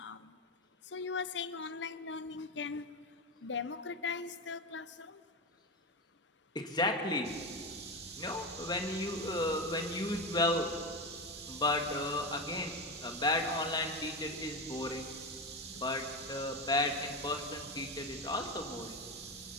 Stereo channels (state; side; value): normal; both; correlation 0.17